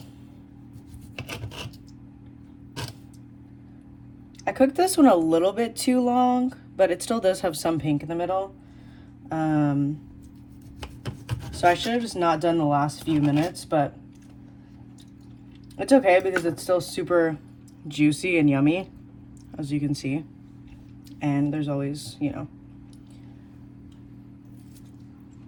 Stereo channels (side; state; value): both; identical; correlation 1.00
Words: I cooked this one a little bit too long, but it still does have some pink in the middle. So I should have just not done the last few minutes, but it's okay because it's still super juicy and yummy, as you can see. And there's always, you know,